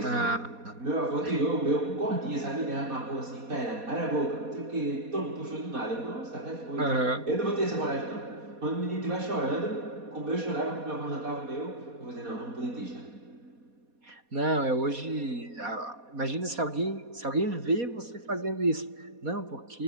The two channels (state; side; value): late; left; 4.2 ms